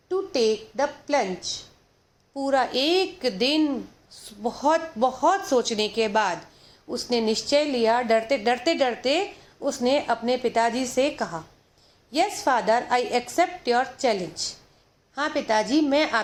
to take the plunge. पूरा एक दिन बहुत बहुत सोचने के बाद उसने निश्चय लिया। डरते उसने अपने पिताजी से कहा, yes father, I accept your challenge. हाँ पिताजी, मैं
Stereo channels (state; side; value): identical; both; correlation 1.00